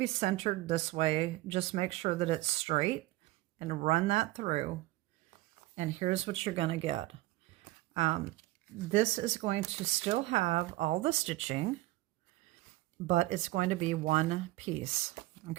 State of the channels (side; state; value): left; quieter; 18.5 dB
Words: centered this way. Just make sure that it's straight and run that through. And here's what you're going to get. This is going to still have all the stitching, but it's going to be one piece,